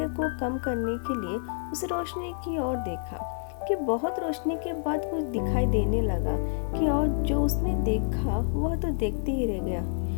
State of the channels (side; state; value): right; silent; digital silence